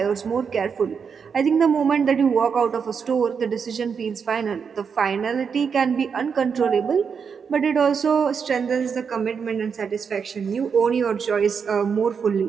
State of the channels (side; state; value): left; quieter; 6.3 dB